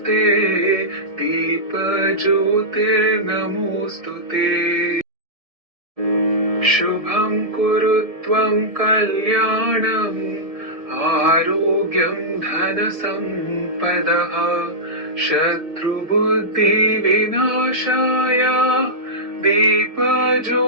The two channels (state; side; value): late; left; 1.7 ms